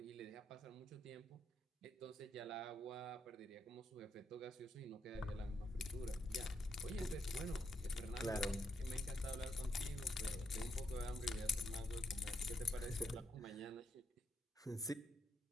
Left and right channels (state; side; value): normal; both; correlation 0.80